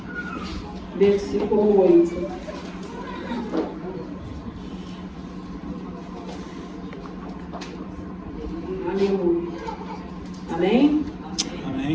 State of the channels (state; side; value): identical; both; correlation 1.00